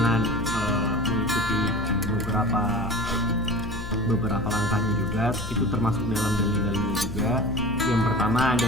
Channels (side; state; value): left; noise; hum, 8 dB below the sound